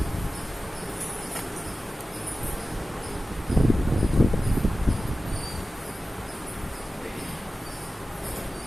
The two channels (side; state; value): both; normal; correlation 0.95